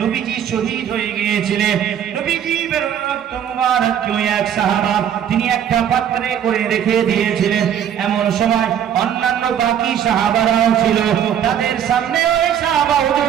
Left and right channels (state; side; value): quieter; left; 9.4 dB